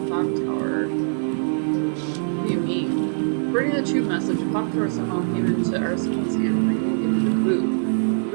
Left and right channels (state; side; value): silent; left; 63 dB below the other